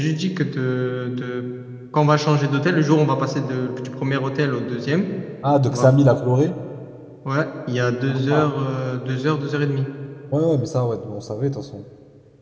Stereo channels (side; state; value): both; identical; correlation 1.00